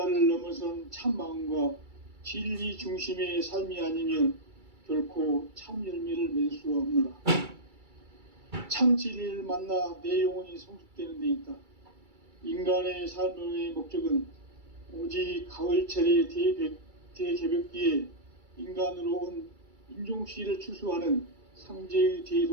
넘어선 참마음과 진리 중심의 삶이 아니면 결코 참 열매를 맺을 수가 없노라. 참 진리를 만나 내 영혼이 성숙되는 데 있다. 인간의 삶의 목적은 오직 가을철의 대개벽기에 인간으로 온 인종시를 추수하는 상제의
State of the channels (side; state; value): left; late; 2.3 ms